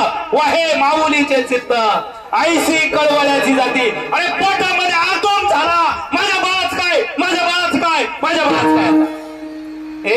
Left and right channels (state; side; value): identical; both; correlation 1.00